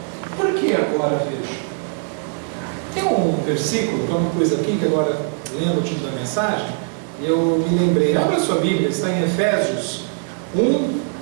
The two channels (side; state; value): left; silent; 63 dB below the other